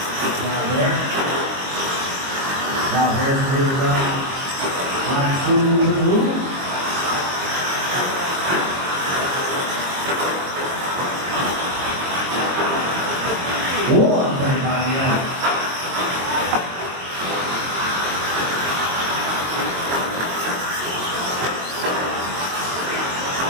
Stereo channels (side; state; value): left; late; 22 ms